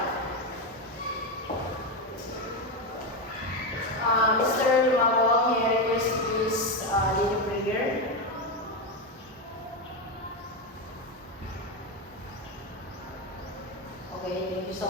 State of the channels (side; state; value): both; normal; correlation 0.11